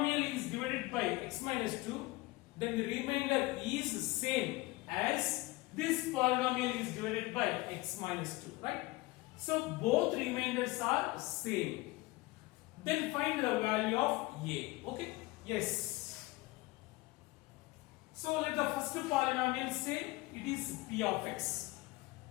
is divided by x minus 2, then the remainder is same as this polynomial is divided by x minus 2, right? So both remainders are same. Then find the value of a. Okay? Yes. So let the first polynomial say it is p of x.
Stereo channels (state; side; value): quieter; right; 21.2 dB